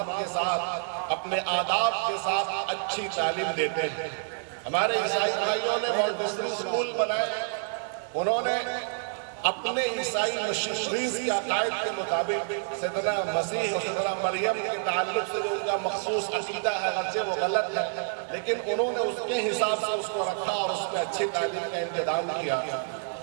کے ساتھ، اپنے آداب کے ساتھ اچھی تعلیم دیتے ہیں۔ ہمارے عیسائی بھائیوں نے مونٹیسری اسکول بنائے، انہوں نے اپنے عیسائی مشنریز کے عقائد کے مطابق سیدنا مسیح اور سیدنا مریم کے تعلق سے جو ان کا مخصوص عقیدہ ہے، اگرچہ وہ غلط ہے، لیکن انہوں نے اس کے حساب سے اس کو رکھا اور اس میں اچھی تعلیم کا انتظام کیا۔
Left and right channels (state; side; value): silent; left; digital silence